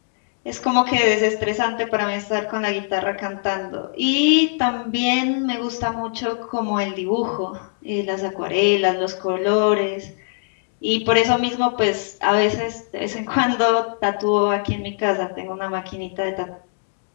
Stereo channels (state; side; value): silent; right; digital silence